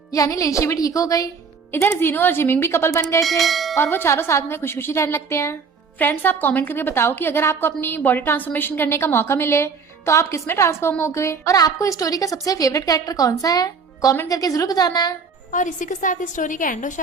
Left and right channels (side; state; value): left; quieter; 5.3 dB